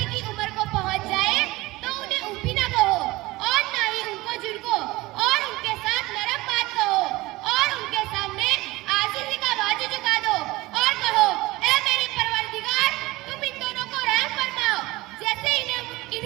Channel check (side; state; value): left; quieter; 20.1 dB